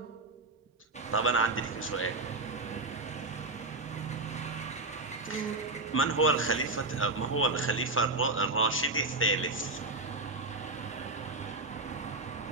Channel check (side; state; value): left; quieter; 3.1 dB